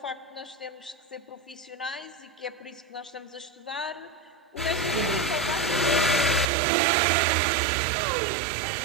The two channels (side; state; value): left; drops out; at 6.5 s